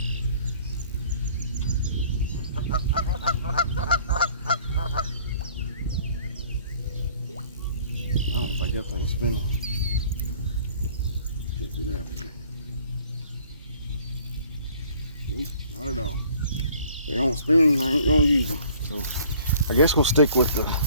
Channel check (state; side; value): inverted; both; correlation -0.55